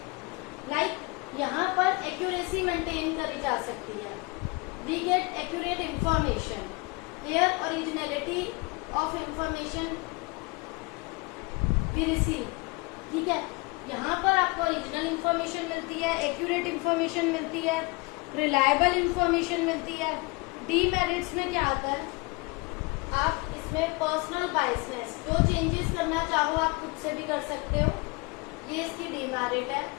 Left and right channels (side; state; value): right; quieter; 26.9 dB